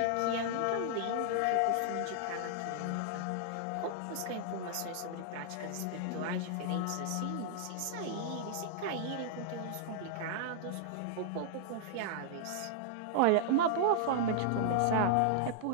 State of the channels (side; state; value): both; different; correlation -0.01